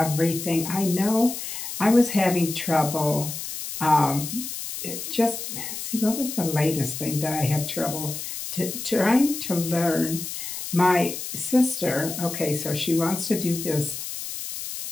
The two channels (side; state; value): left; noise; hiss, 7 dB below the sound